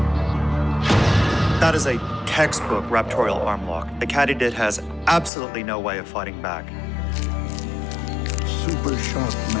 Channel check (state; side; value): drops out; right; at 5.3 s